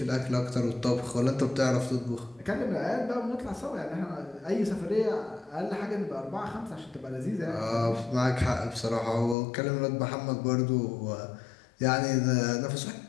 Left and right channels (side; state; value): right; drops out; at 9.3 s